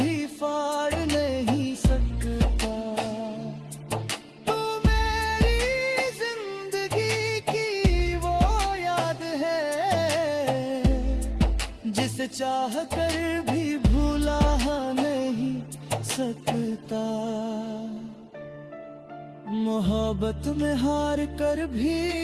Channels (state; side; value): identical; both; correlation 1.00